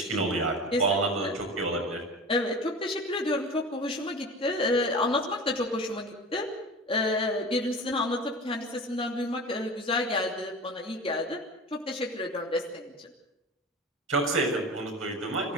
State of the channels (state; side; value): normal; both; correlation 0.34